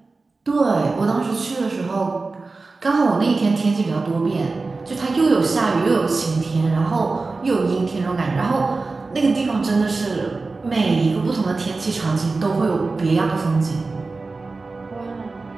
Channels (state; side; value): quieter; left; 3.8 dB